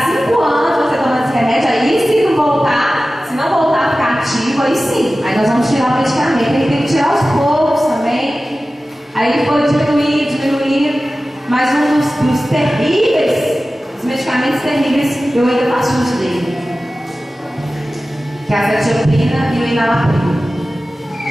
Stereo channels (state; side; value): normal; both; correlation 0.96